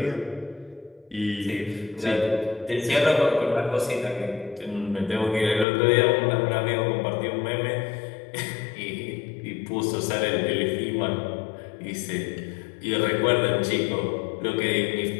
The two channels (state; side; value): drops out; right; at 5.7 s